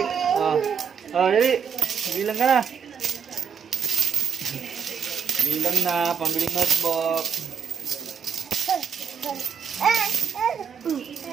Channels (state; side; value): quieter; left; 7.2 dB